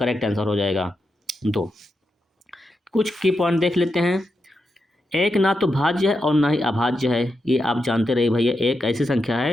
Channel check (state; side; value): normal; both; correlation 0.86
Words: आंसर हो जाएगा। 2 कुछ की पॉइंट देख लेते हैं। एक ना तो भाज्य है और ना ही अभाज्य है, ये आप जानते रहिए भैया, एक ऐसी संख्या